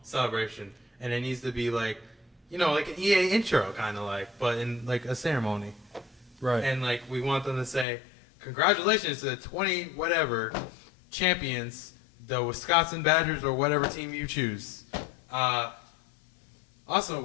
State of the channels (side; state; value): right; drops out; at 7.9 s